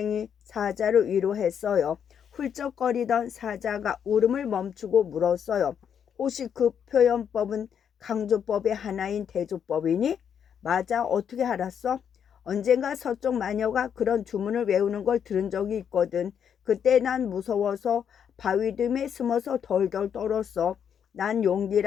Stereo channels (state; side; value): quieter; right; 8.1 dB